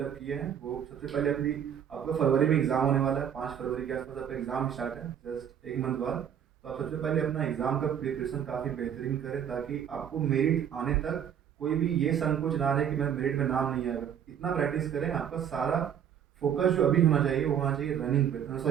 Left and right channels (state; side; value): quieter; left; 8.9 dB